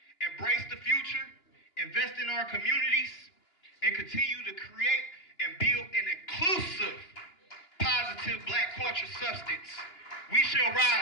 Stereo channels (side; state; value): right; late; 2.9 ms